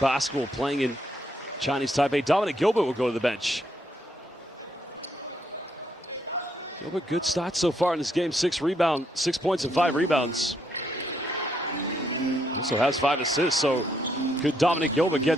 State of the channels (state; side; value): normal; both; correlation 0.74